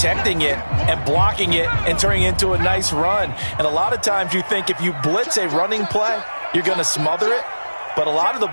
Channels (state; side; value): inverted; both; correlation -1.00